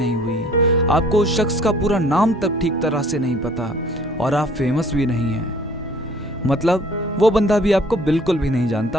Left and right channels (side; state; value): both; normal; correlation 0.54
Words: हुई, आपको उस शख्स का पूरा नाम तक ठीक तरह से नहीं पता और आप फेमस भी नहीं हैं, मतलब वो बंदा भी आपको बिल्कुल भी नहीं